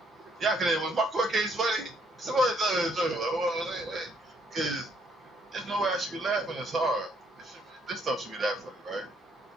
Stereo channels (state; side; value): normal; both; correlation 0.68